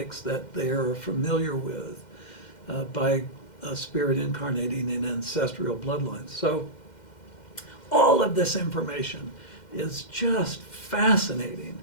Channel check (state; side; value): late; right; 2.1 ms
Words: that they are familiar with by a spirit incarnating in ancestral bloodlines. So all of this information is just fascinating.